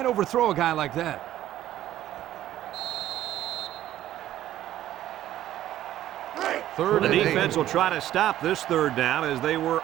overthrow a guy like that. Third The and 8. defense will try to stop this third down as they were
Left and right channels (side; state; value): left; quieter; 13.0 dB